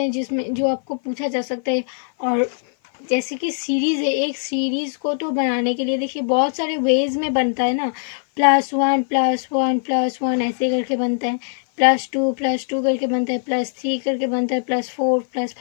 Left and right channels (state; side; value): silent; right; 55 dB below the other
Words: जिसमें जो आपको पूछा जा सकता है। और जैसे कि सीरीज़ है, एक सीरीज़ को तो बनाने के लिए देखिए बहुत सारे वेज में बनता है ना, +1 ऐसे करके बनता है, +2 करके बनता है, +3 करके बनता है, +4